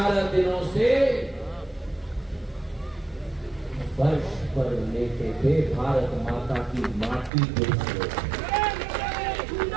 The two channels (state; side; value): drops out; left; at 7.3 s